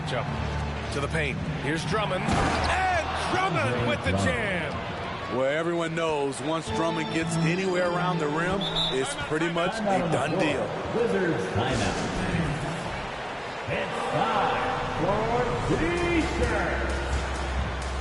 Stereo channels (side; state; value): both; identical; correlation 1.00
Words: To the paint. Here's Drummond. And Drummond with the jam. Where everyone knows once Drummond gets anywhere around the rim, it's pretty much a done deal. Wizards timeout. It's time for T-shirts.